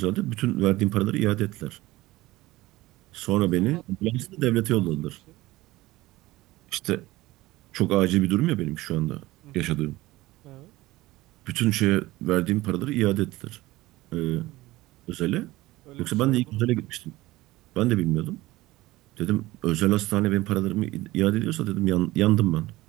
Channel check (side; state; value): left; quieter; 18.5 dB